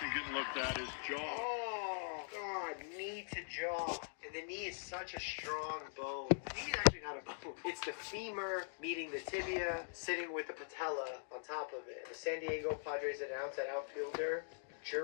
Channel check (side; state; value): right; silent; digital silence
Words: getting looked at his jaw. Oh, God, knee to jaw. And the knee is such a strong bone. The knee is actually not a bone. It's the femur meeting the tibia, sitting with the patella on top of it. The San Diego Padres announced that outfielder